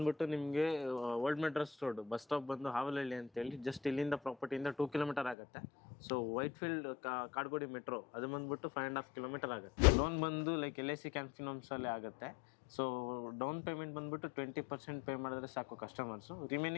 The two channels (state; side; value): drops out; right; at 5.4 s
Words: ನಿಮಗೆ old Madras road bus stop ಬಂದು ಹಾವಲಹಳ್ಳಿ ಅಂತ ಹೇಳಿ ಜಸ್ಟ್ ಇಲ್ಲಿಂದ ಪ್ರಾಪರ್ಟಿಯಿಂದ 2 kilometer ಆಗುತ್ತೆ. So white field Kadugodi metro ಅದು ಬಂದ್ಬಿಟ್ಟು 5.5 kilometer ಆಗುತ್ತೆ. ಲೋನ್ ಬಂದು ಲೈಕ್ LIC ಕ್ಯಾನ್ಫಿನಮ್ಸ್ ಅಲ್ಲಿ ಆಗುತ್ತೆ. ಸೊ ಡೌನ್ ಪೇಮೆಂಟ್ ಬಂದ್ಬಿಟ್ಟು 20% ಪೇ ಮಾಡಿದ್ರೆ ಸಾಕು ಕಸ್ಟಮರ್ಸು.